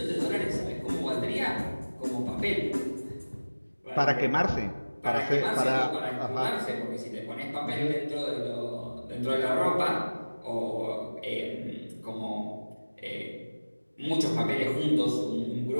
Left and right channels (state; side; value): inverted; both; correlation -1.00